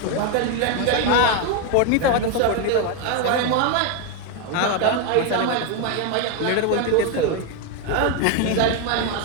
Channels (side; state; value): both; different; correlation 0.01